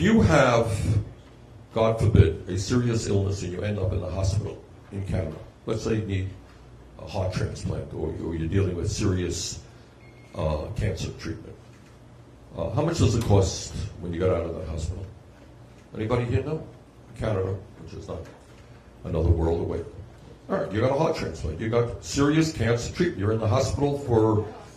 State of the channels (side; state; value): both; identical; correlation 1.00